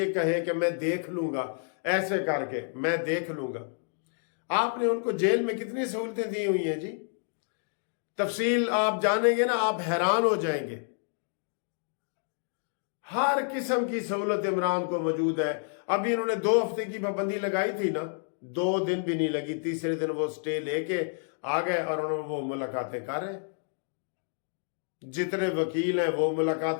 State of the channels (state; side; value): silent; right; digital silence